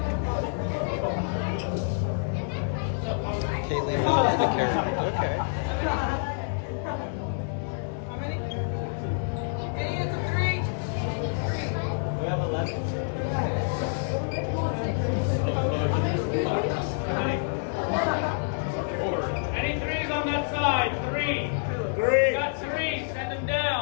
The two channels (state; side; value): silent; right; digital silence